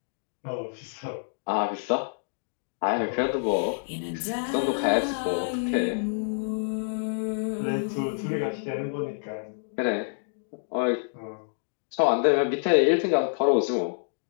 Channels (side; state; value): right; silent; digital silence